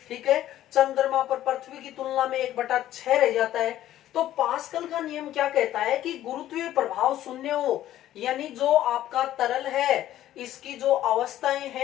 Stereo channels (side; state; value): right; quieter; 13.0 dB